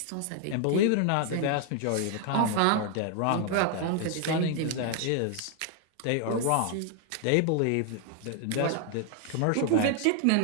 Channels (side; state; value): both; different; correlation 0.00